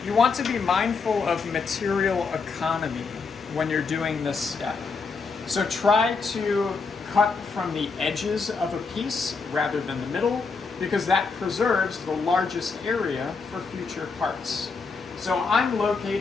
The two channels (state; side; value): quieter; right; 4.7 dB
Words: You want to be mindful of material economy when you're doing this step. So try to cut from the edges of a piece rather than the middle, because that preserves the largest area for future parts. So I'm